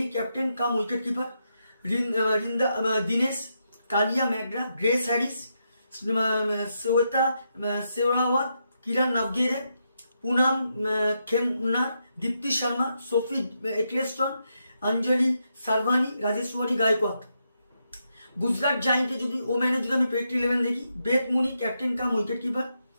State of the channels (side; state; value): both; inverted; correlation -0.82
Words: ক্যাপ্টেন কাম উইকেট কিপার, দিনেশ কালিয়া ম্যাগরা, গ্রেস হ্যারিস, শ্বেতা শেওরাওয়াত, কিরণ নাভগিরে, পুনাম খেমনার, দীপ্তি শর্মা, সোফি এক্লেস্টন, অঞ্জলি সারভানি, রাজেশ্বরী গায়কোয়াদ। গুজরাট জায়েন্টে যদি ওম্যানে যদি আমি প্রেডিক্ট 11 দেখি, বেথ মুনি ক্যাপ্টেন কাম উইকেট কিপার,